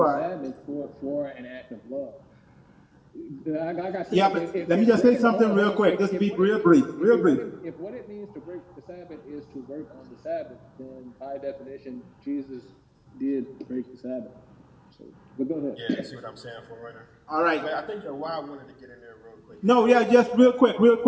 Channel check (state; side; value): identical; both; correlation 1.00